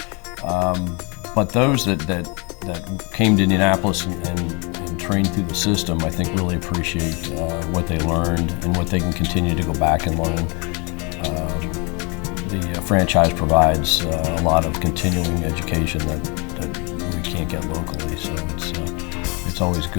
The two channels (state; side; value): quieter; right; 31.5 dB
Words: But those that came to Indianapolis and trained through the system, I think, really appreciate what they learned and what they can continue to go back and learn. The franchise provides a lot of continuing education that we can't get locally, so it's always